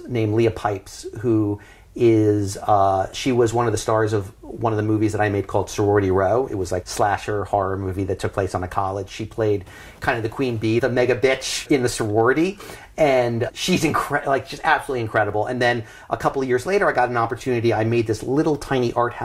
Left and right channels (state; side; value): identical; both; correlation 1.00